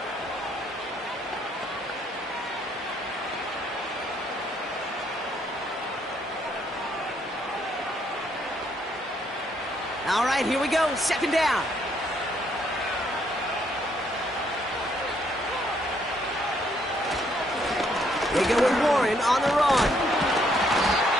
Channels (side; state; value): both; normal; correlation 0.70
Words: All right, here we go. Second down. They go with Warren on the run.